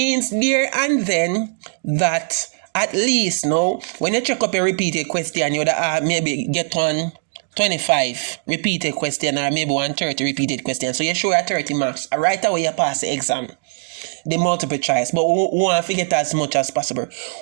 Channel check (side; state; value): left; silent; digital silence